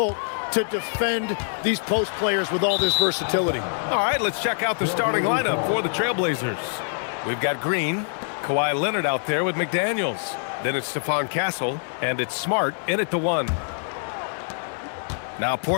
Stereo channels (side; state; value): right; silent; 62 dB below the other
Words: to defend these post players with all this versatility. All right, let's check out the starting lineup for the Trailblazers. We've got Green, Kawhi Leonard out there with McDaniels. Then it's Stephon Castle, and it's Smart in at the 1. Now